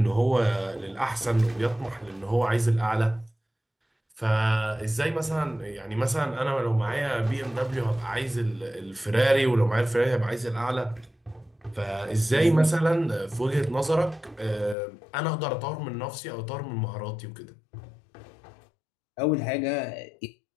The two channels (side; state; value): right; drops out; at 14.8 s